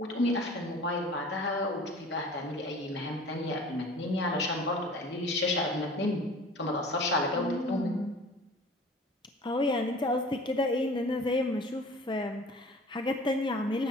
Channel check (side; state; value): both; normal; correlation 0.44